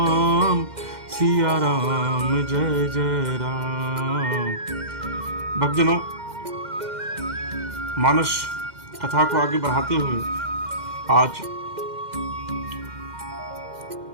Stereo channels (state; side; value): late; left; 2.1 ms